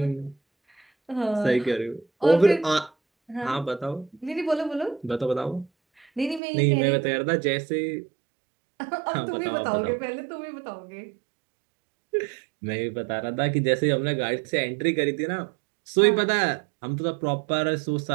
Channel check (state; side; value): drops out; left; at 6.4 s